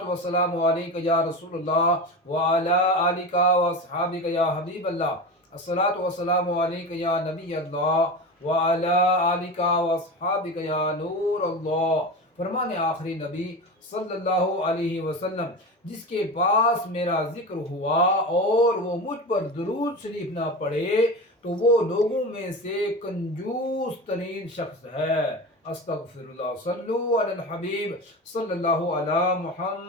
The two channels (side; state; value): both; normal; correlation 0.26